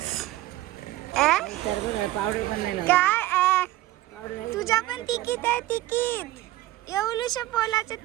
पावडर पण नाही काय तुझ्या पण तिकीट आहे तिकीट. एवढूशा पोलाचं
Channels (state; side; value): quieter; left; 16.1 dB